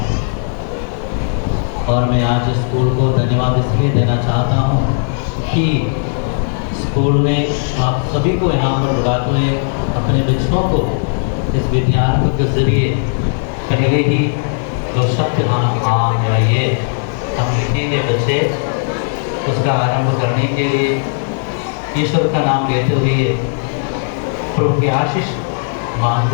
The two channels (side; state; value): right; silent; digital silence